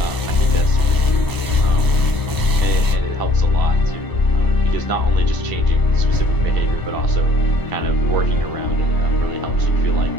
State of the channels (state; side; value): late; right; 1.0 ms